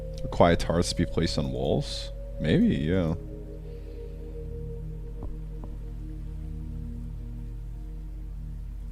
Require turrets to be placed on walls? Maybe, yeah.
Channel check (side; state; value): both; identical; correlation 1.00